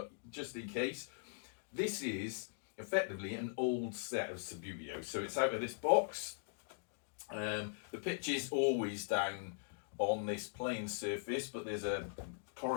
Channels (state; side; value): silent; right; digital silence